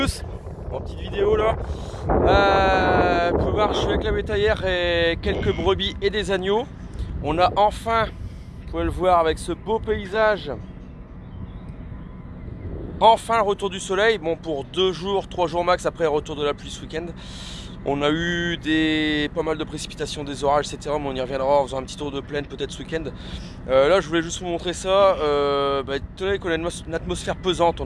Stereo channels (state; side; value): identical; both; correlation 1.00